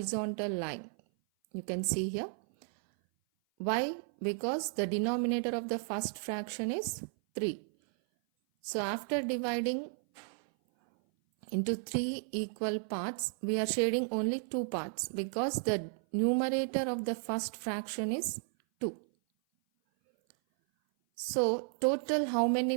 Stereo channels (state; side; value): silent; left; 55 dB below the other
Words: line. You can see here. Why? Because the denominator of the first fraction is 3. So after dividing into 3 equal parts, we are shading only 2 parts because the numerator of the first fraction is 2. So total how